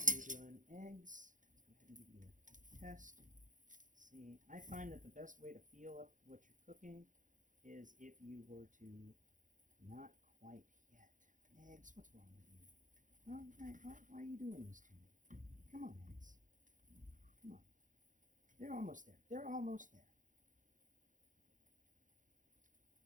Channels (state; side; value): late; left; 0.37 ms